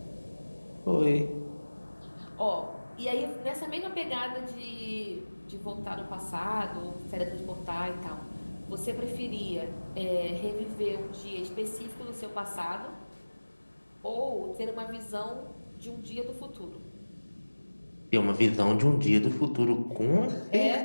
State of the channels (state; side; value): inverted; both; correlation -1.00